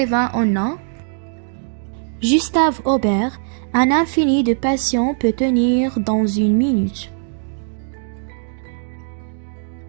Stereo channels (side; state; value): left; silent; digital silence